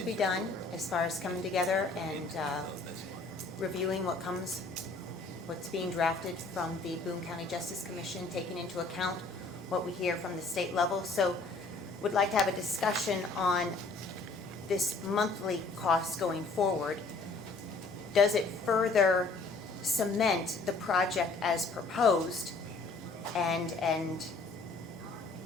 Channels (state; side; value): quieter; right; 3.5 dB